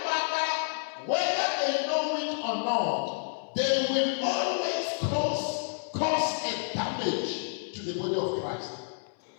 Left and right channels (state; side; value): silent; right; 58 dB below the other